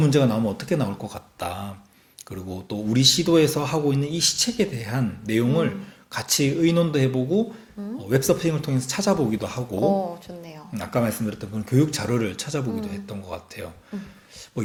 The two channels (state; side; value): identical; both; correlation 1.00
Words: 나오면 어떻게 나올 것 같다. 그리고 또 우리 시도에서 하고 있는 이 시책에 대한 내용을 같이 의논도 해보고 웹서핑을 통해서 찾아보기도 하고 좋네요. 아까 말씀드렸던 그런 교육 자료를 찾아보기도 했던 것 같아요. 뭐